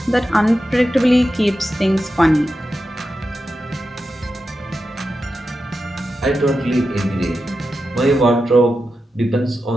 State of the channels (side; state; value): both; normal; correlation 0.90